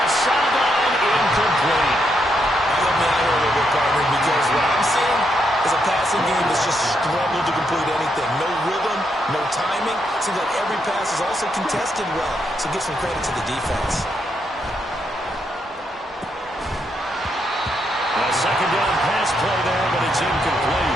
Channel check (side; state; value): both; normal; correlation 0.79